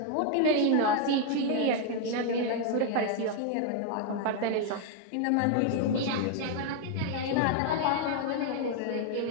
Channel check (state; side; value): different; both; correlation 0.00